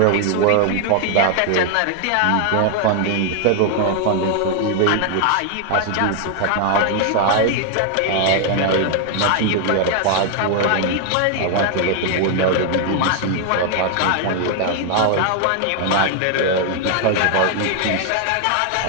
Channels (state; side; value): different; both; correlation 0.00